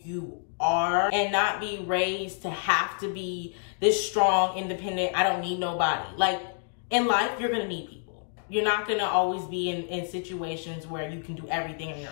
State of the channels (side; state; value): right; silent; digital silence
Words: you are and not be raised to have to be this strong, independent, I don't need nobody. Like, in life, you're gonna need people. You're not gonna always be in situations where you can do everything on